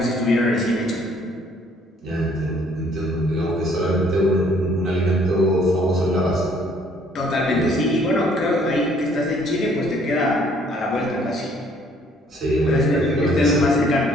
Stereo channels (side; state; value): both; normal; correlation 0.62